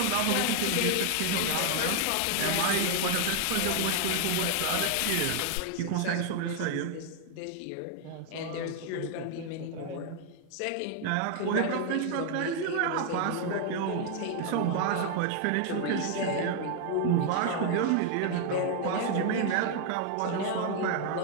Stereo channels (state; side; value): different; both; correlation 0.00